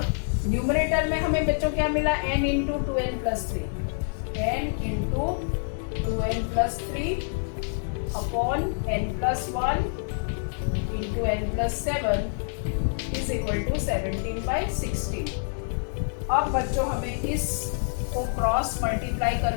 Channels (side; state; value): right; silent; 60 dB below the other